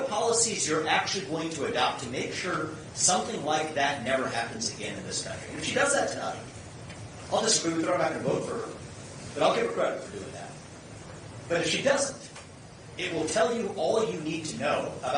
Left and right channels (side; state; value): both; identical; correlation 1.00